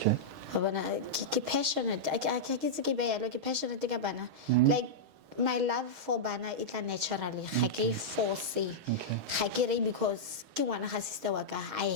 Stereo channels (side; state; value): left; late; 6.3 ms